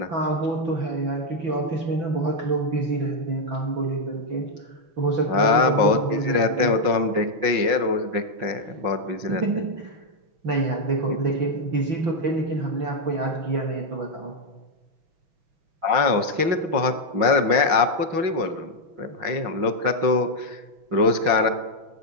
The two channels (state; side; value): late; left; 5.6 ms